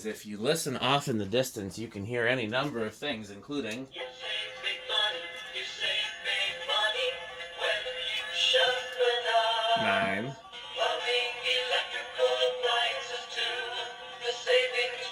if you listen off in the distance, you can hear any number of things, including... 9.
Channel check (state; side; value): identical; both; correlation 1.00